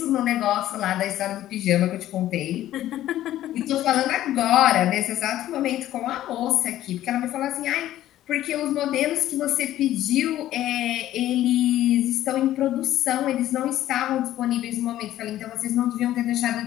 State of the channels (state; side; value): quieter; right; 13.4 dB